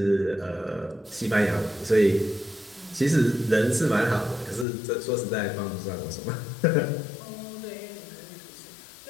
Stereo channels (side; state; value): right; drops out; at 4.7 s